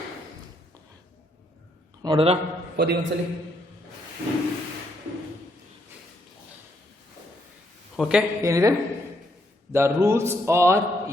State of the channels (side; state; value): both; normal; correlation 0.74